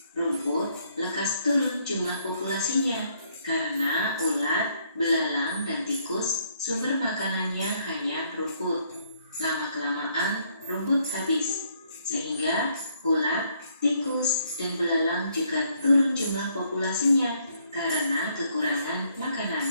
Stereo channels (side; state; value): both; inverted; correlation -0.70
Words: Rumput lekas turun jumlah populasinya karena ulat, belalang, dan tikus sumber makanannya hanya rumput. Lama-kelamaan rumput habis, sehingga ulat, tikus, dan belalang juga turun jumlah populasinya karena kekurangan